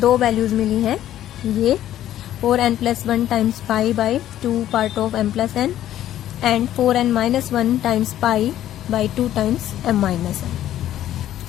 values मिली हैं, ये 4n plus 1 times pi by 2 part of m plus n and 4n minus 1 times pi by 2 times m minus n।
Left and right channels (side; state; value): right; quieter; 12.3 dB